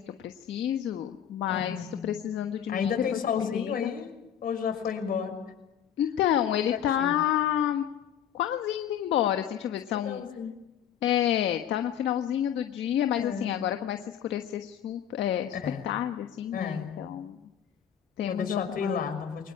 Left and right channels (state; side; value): quieter; right; 9.5 dB